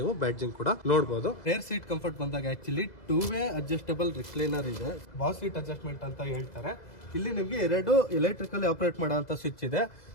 ಬ್ಯಾಡ್ಜಿಂಗ್ ಕೂಡ ನೋಡಬಹುದು. ರೇರ್ ಸೀಟ್ ಕಂಫರ್ಟ್ ಬಂದಾಗ ಆಕ್ಚುಲಿ 2-ವೇ ಅಡ್ಜಸ್ಟಬಲ್ ರಿಕ್ಲೈನರ್ ಇದೆ. ಬಾಸ್ ಸೀಟ್ ಅಡ್ಜಸ್ಟ್ಮೆಂಟ್ ಅಂತ ಹೇಳ್ತಾರೆ. ಇಲ್ಲಿ ನಿಮ್ಗೆ 2 ಎಲೆಕ್ಟ್ರಿಕಲಿ ಆಪರೇಟ್ ಮಾಡುವಂತ ಸ್ವಿಚ್ ಇದೆ.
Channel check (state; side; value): late; right; 2.0 ms